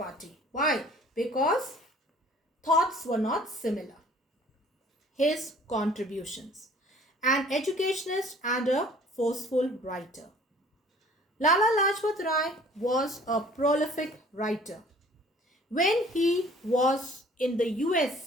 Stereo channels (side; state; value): both; normal; correlation 0.52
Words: Why? Because thoughts were not similar. His contributions. An educationist and a forceful writer. Lala Lajpat Rai was a prolific writer. When he was in the